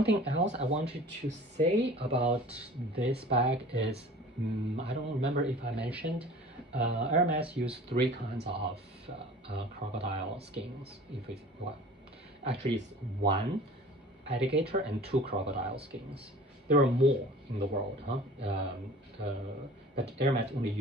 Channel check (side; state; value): both; normal; correlation 0.44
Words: else I wanted to say about this bag is, I don't remember if I mentioned, Hermes used 3 kinds of crocodile skins. If it's well, actually it's 1 alligator and 2 crocodile skins. There are more in the world, but Hermes only